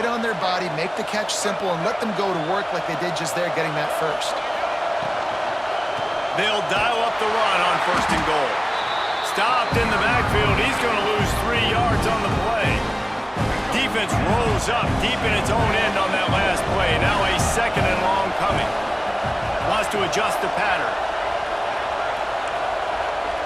on their body, make the catch simple, and let them go to work like they did just there, getting that first. They'll dial up the run on first and goal. Stopped in the backfield. He's going to lose 3 yards on the play. Defense rolls up deep in its own end on that last play. Now a second and long coming. Wants to adjust the pattern.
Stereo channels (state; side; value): identical; both; correlation 1.00